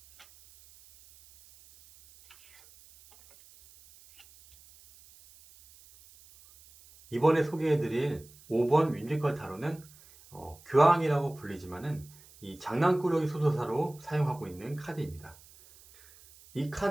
이번에 소개해드릴 5번 뮤지컬 타로는 교황이라고 불리지만은 이 장난꾸러기 소도사로 사용하고 있는 카드입니다. 이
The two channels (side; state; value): right; noise; hiss, 24 dB below the sound